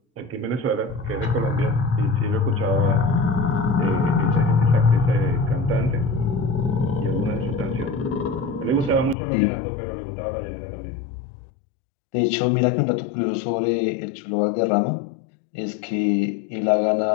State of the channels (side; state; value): right; drops out; at 9.2 s